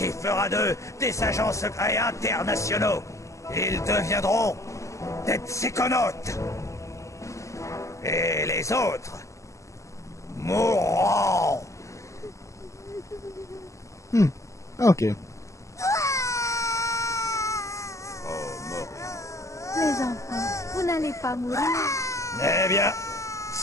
fera d'eux des agents secrets internationaux. Ils deviendront des psychonautes. Et les autres mourront. Ok. Les enfants, vous n'allez pas mourir. Eh bien,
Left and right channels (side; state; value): right; late; 0.15 ms